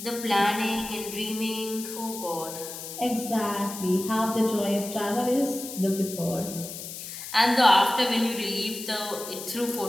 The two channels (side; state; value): left; noise; hiss, 10 dB below the sound